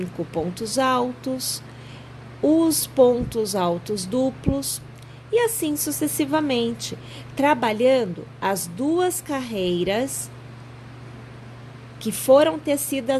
pontos altos, os pontos altos duplos, e assim sucessivamente, trabalhando as duas carreiras que foram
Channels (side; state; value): both; identical; correlation 1.00